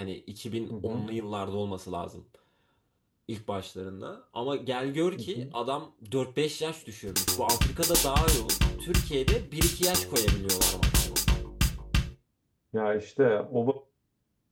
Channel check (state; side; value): identical; both; correlation 1.00